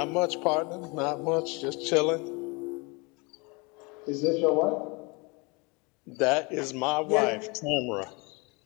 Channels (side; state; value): right; quieter; 28.6 dB